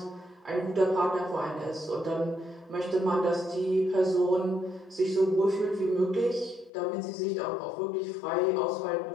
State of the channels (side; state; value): right; drops out; at 6.7 s